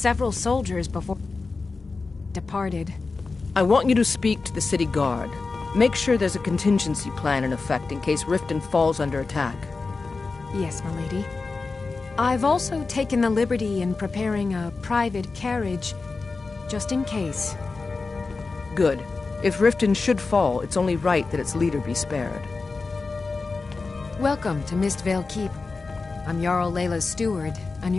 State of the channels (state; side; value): quieter; right; 4.1 dB